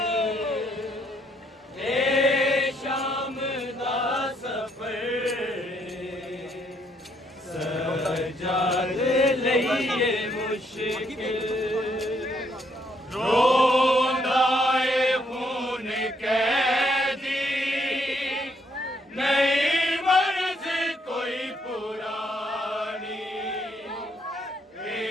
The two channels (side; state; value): both; normal; correlation 0.71